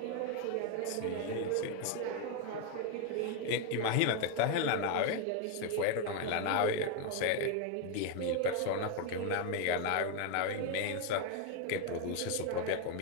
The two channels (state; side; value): different; both; correlation 0.01